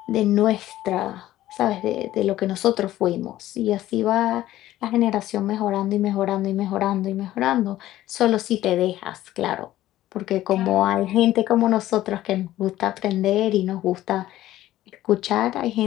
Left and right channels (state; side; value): quieter; right; 14.4 dB